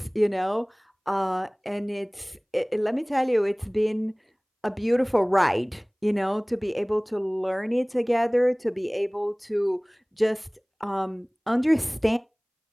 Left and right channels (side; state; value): both; identical; correlation 1.00